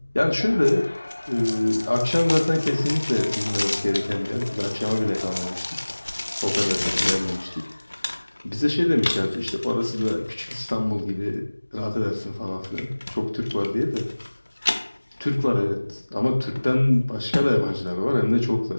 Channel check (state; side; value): inverted; both; correlation -1.00